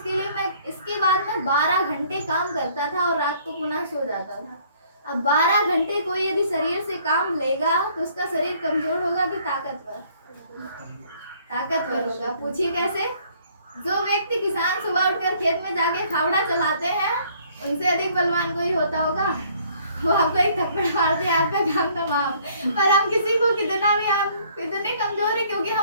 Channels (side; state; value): both; inverted; correlation -0.60